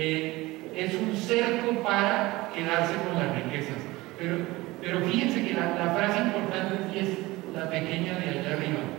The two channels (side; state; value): left; quieter; 20.2 dB